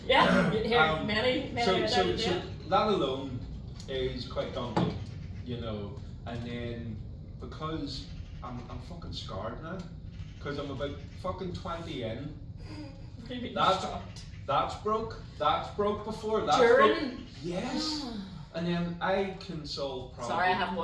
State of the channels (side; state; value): both; identical; correlation 1.00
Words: Yeah, here, many So that alone is quite daunting, you know. And then because I'm fucking scarred now, because I'm about fucking 20 in. That's broke. That's broke before. That's During? Broke. Yes. And then I can solve problems. Sorry, I haven't